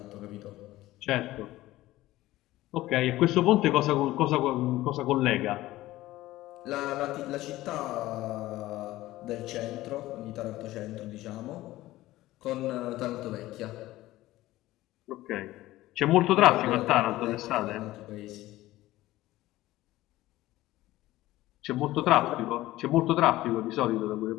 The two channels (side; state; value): right; quieter; 16.6 dB